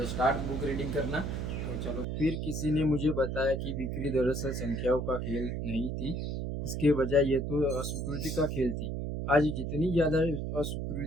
स्टार्ट बुक रीडिंग करना। तो चलो, फिर किसी ने मुझे बताया कि बिक्री दरअसल संख्याओं का खेल नहीं थी, इसके बजाय ये तो अस्वीकृति का खेल थी। आज जितनी ज़्यादा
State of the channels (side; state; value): right; noise; hum, 3 dB below the sound